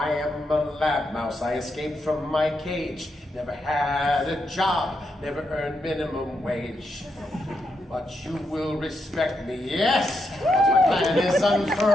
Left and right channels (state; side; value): normal; both; correlation 0.82